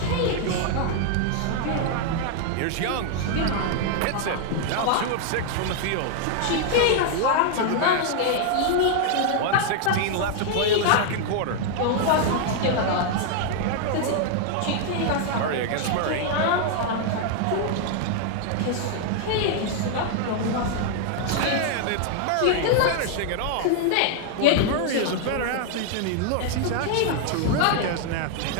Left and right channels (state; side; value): different; both; correlation 0.00